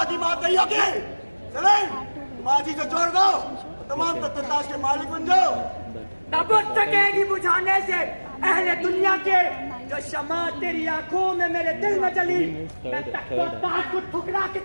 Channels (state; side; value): inverted; both; correlation -1.00